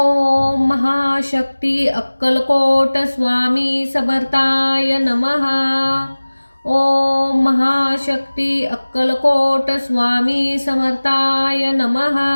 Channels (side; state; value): both; inverted; correlation -1.00